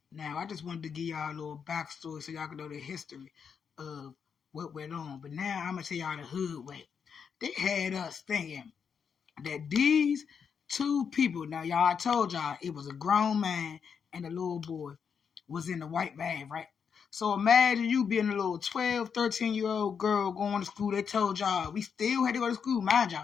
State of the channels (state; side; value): quieter; right; 6.7 dB